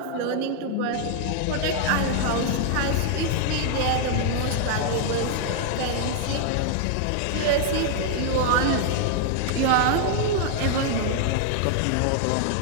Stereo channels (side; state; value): both; different; correlation 0.00